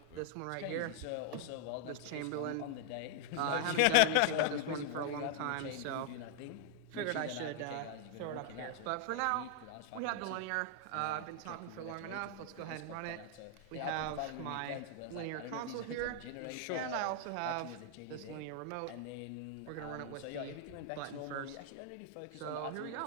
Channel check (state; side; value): different; both; correlation 0.00